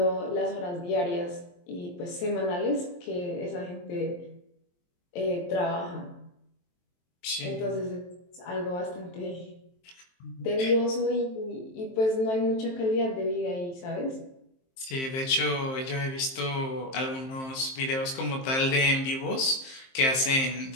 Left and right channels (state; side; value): late; right; 23 ms